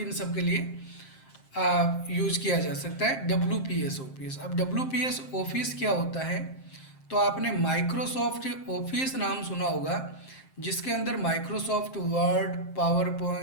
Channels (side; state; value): right; late; 7.6 ms